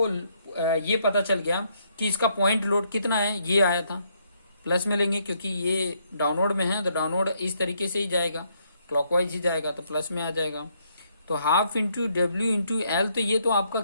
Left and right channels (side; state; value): both; inverted; correlation -0.72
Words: ये पता चल गया कि इसका पॉइंट लोड कितना है, ये आया था, प्लस में लेंगे क्योंकि ये डाउनवर्ड में है तो डाउनवर्ड इस तरीके से ही जाएगा, क्लॉकवाइज ही जाएगा तो प्लस में आ जाएगा। तो half into W into L, तो ये तो आपका